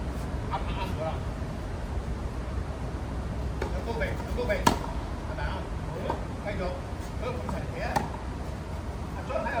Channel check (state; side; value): identical; both; correlation 1.00